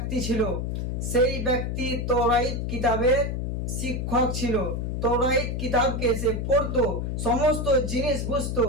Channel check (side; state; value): left; noise; hum, 2 dB below the sound